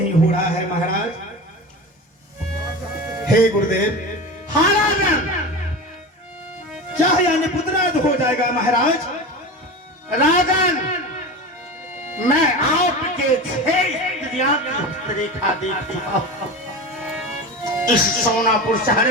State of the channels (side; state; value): both; normal; correlation 0.28